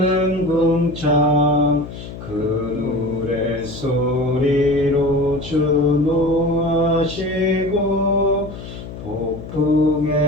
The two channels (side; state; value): left; noise; hum, 12 dB below the sound